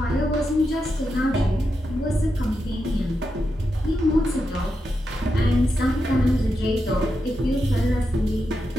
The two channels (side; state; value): both; normal; correlation 0.86